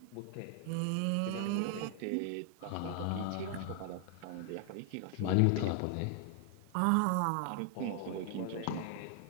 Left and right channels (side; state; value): both; different; correlation 0.00